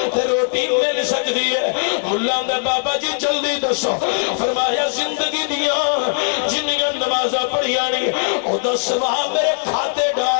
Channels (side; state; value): right; silent; digital silence